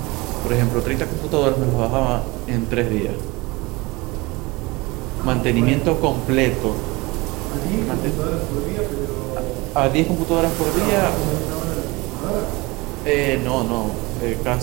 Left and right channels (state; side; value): quieter; left; 23.5 dB